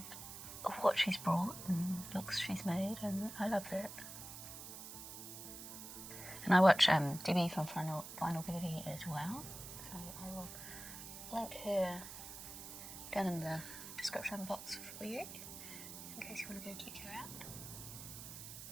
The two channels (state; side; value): noise; right; hiss, 11 dB below the sound